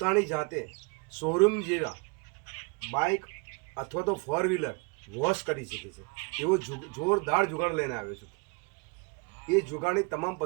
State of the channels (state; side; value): quieter; left; 31.2 dB